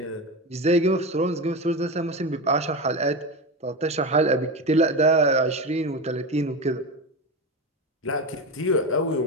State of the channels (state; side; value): normal; both; correlation 0.21